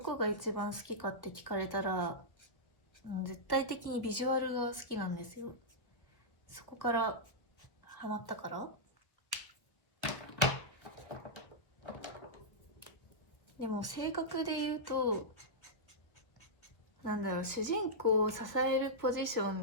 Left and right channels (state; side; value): late; right; 1.1 ms